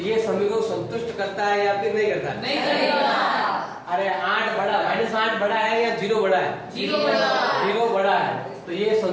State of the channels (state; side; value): identical; both; correlation 1.00